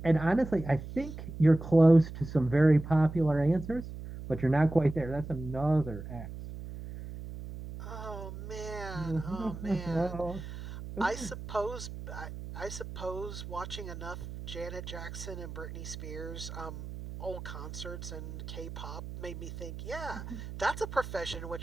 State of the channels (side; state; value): right; noise; hum, 10 dB below the sound